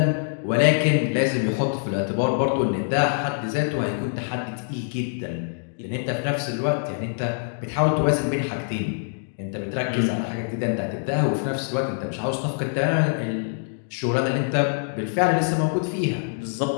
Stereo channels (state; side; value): silent; right; digital silence